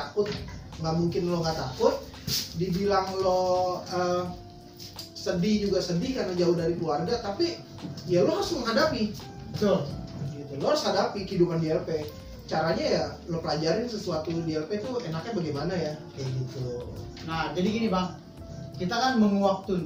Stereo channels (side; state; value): both; identical; correlation 1.00